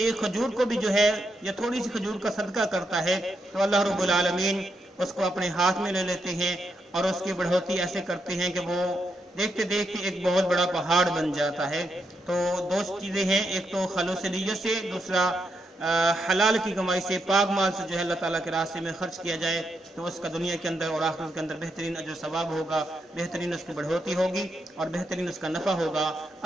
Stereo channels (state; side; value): normal; both; correlation 0.81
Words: 1 کھجور کو بھی جو ہے یا تھوڑی سی کھجور کا صدقہ کرتا ہے تو اللہ رب العالمین اس کو اپنے ہاتھ میں لے لیتے ہیں اور اس کی بڑھوتی ایسے کرتے ہیں کہ وہ دیکھتے دیکھتے ایک بہت بڑا پہاڑ بن جاتا ہے۔ تو 2 چیزیں ہیں، ایک تو خالص نیت سے، دوسرا حلال کی کمائی سے، پاک مال سے جو ہے اللہ تعالیٰ کے راستے میں خرچ کیا جائے تو اس کا دنیا کے اندر اور آخرت کے اندر بہترین اجر ثواب ہوگا، بہترین اس کی بڑھوتی ہوگی اور بہترین اس کا نفع ہوگا۔